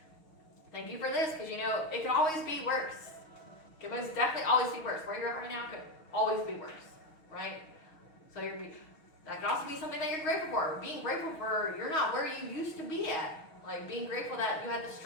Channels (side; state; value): right; late; 6.4 ms